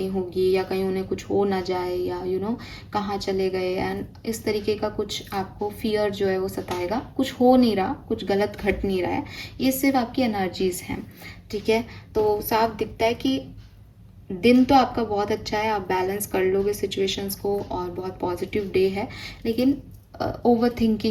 होगी, या कहीं उन्हें कुछ हो ना जाए, या कहाँ चले गए, एंड इस तरीके का कुछ आपको फियर जो है वो सताएगा। कुछ हो नहीं रहा, कुछ गलत घट नहीं रहा है, ये सिर्फ आपकी एनर्जीज़ हैं, ठीक है। तो साफ दिखता है कि दिन तो आपका बहुत अच्छा है, आप बैलेंस कर लोगे सिचुएशंस को और बहुत पॉजिटिव डे है। लेकिन ओवर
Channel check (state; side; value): identical; both; correlation 1.00